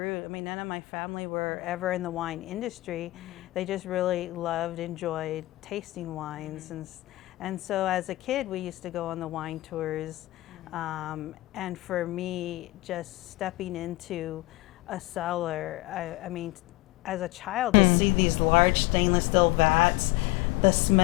I mean, none of my family were ever in the wine industry. They just really loved, enjoyed tasting wines. And so as a kid, we used to go on the wine tours. And for me, just stepping into a cellar, I mean, as a child, to see these large stainless steel vats, the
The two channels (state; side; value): quieter; right; 19.6 dB